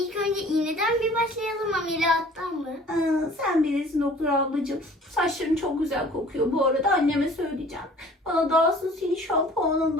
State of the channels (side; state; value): both; normal; correlation 0.50